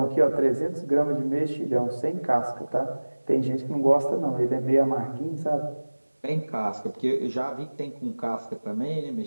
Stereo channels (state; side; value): inverted; both; correlation -1.00